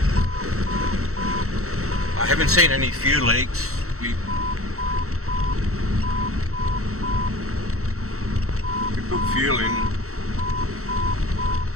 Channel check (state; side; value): late; left; 0.64 ms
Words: I haven't seen any fuel leaks. We put fuel in,